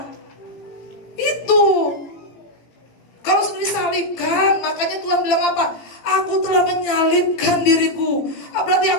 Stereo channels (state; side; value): late; right; 17 ms